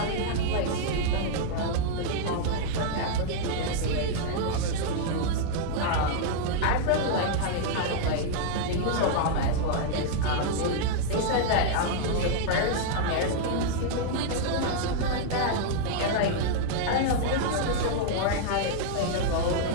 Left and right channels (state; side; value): different; both; correlation -0.01